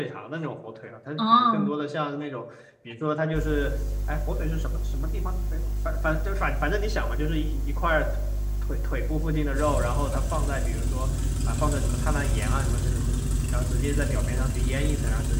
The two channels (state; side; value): identical; both; correlation 1.00